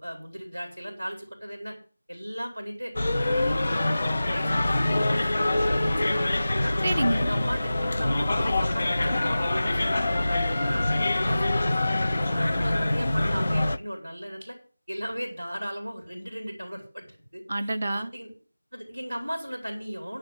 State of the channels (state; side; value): inverted; both; correlation -0.96